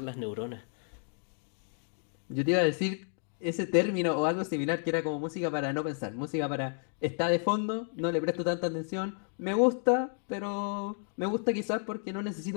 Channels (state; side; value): silent; right; 57 dB below the other